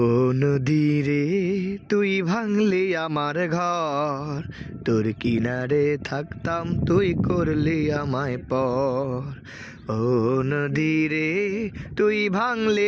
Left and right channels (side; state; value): both; identical; correlation 1.00